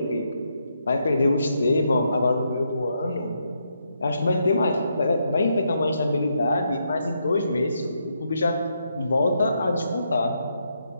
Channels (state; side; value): inverted; both; correlation -0.79